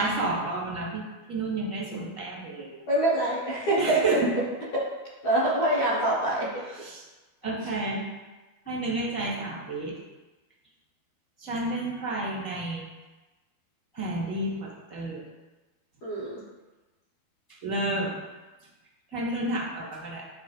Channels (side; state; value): right; late; 12 ms